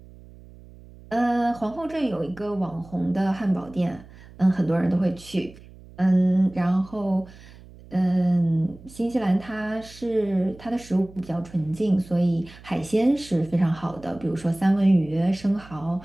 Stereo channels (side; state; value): right; noise; hum, 21 dB below the sound